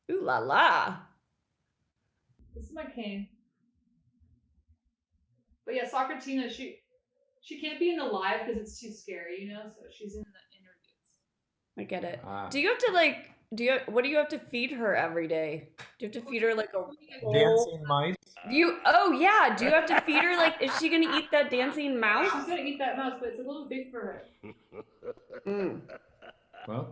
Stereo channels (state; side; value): identical; both; correlation 1.00